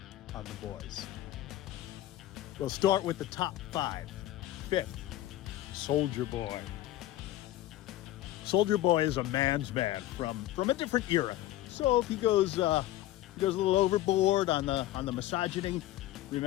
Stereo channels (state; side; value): quieter; right; 14.7 dB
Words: on The Boys. We'll start with the top 5. 5th, Soldier Boy. Soldier Boy is a man's man from a different era. So if he goes a little overboard on the misogyny,